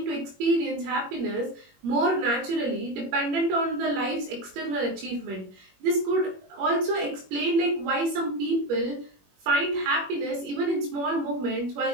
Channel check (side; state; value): left; late; 21 ms